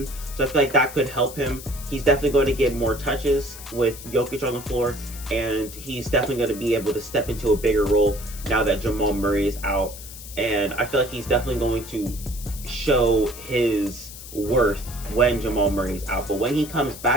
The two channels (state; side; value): noise; left; hiss, 14 dB below the sound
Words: so I feel like that could help him. He's definitely going to get more touches with Jokic on the floor, and he's definitely going to be able to step into a bigger role now that Jamal Murray is out, and I feel like he's definitely going to show his worth when Jamal Murray is out. But when he comes